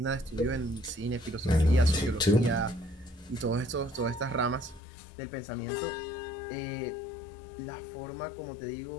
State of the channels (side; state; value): right; drops out; at 4.8 s